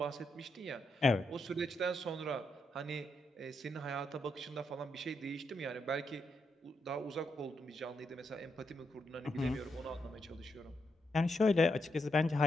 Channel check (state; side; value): normal; both; correlation 0.81